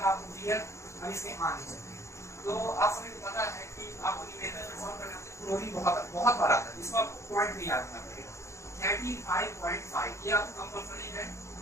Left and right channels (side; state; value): right; late; 0.14 ms